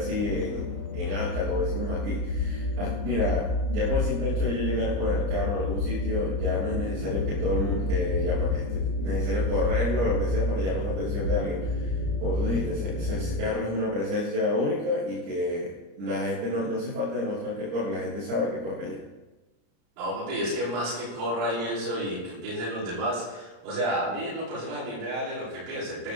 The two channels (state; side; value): late; left; 34 ms